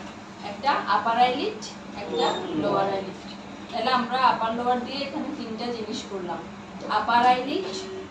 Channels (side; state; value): both; identical; correlation 1.00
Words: একটা আপার আইলিড, একটা লোয়ার আইলিড। তাহলে আমরা আপার লোয়ার দিয়ে এখানে তিনটা জিনিস করলাম, আপার আইলিড,